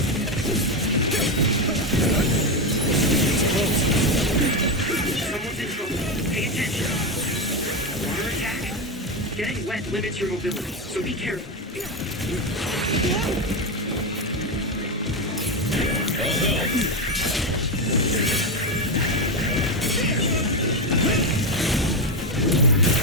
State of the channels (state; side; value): normal; both; correlation 0.11